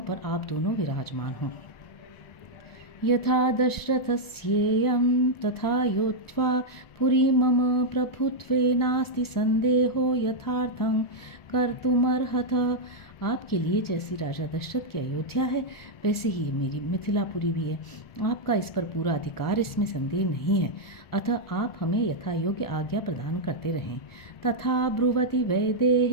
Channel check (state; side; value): late; right; 1.4 ms